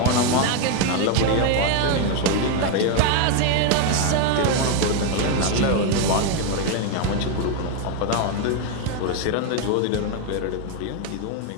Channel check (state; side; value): different; both; correlation 0.01